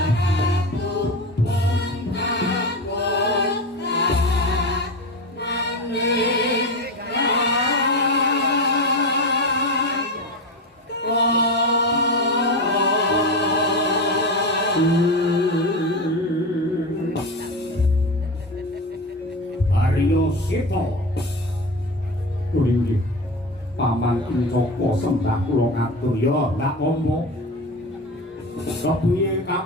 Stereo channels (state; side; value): normal; both; correlation 0.22